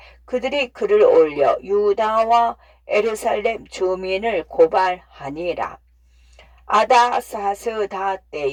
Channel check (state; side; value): identical; both; correlation 1.00